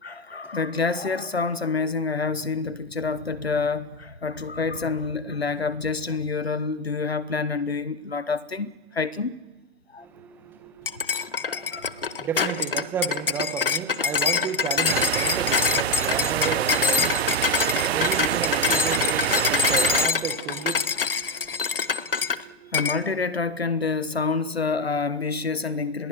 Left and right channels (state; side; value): normal; both; correlation 0.07